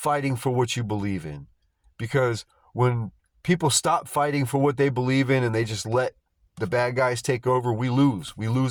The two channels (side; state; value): both; identical; correlation 1.00